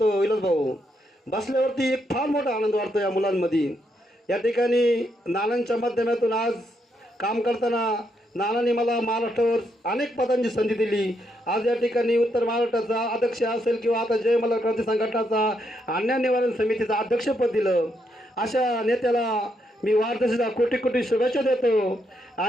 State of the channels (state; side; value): normal; both; correlation 0.78